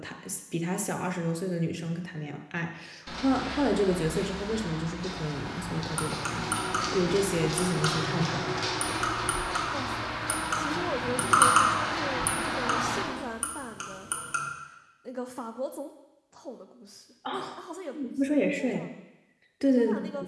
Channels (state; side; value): identical; both; correlation 1.00